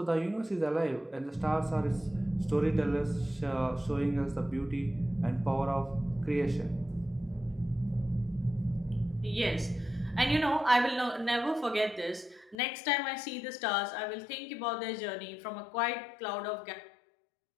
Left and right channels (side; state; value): right; drops out; at 12.6 s